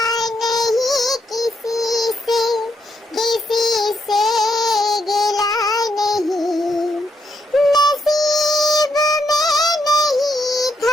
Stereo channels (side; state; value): both; normal; correlation 0.79